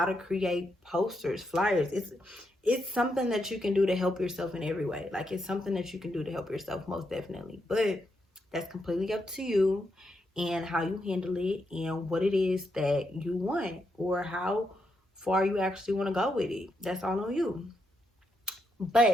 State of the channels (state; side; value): normal; both; correlation 0.81